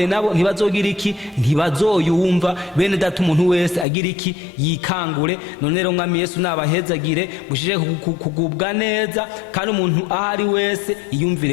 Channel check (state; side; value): drops out; right; at 3.9 s